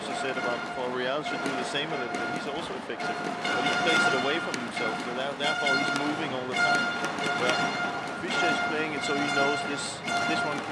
said about before. Rijal should do the same a little bit. He's also effective, but he plays it away from himself. So therefore, he's moving all the time. Where Fischer is playing it so he knows this one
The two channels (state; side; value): identical; both; correlation 1.00